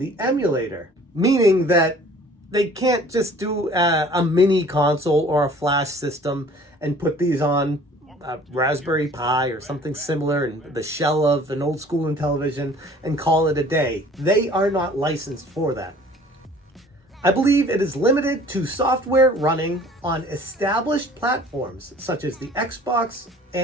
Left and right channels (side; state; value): both; normal; correlation 0.51